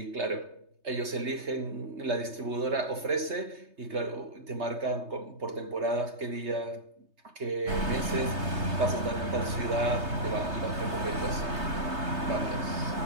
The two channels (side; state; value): left; late; 3.3 ms